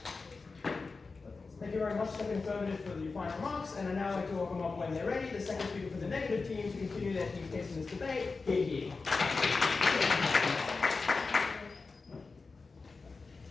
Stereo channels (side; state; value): right; quieter; 4.2 dB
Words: Thank you very much to the affirmative for the final remarks, and I now like to welcome up when they're ready the second speaker for the negative team to continue their team's case in this debate. Here.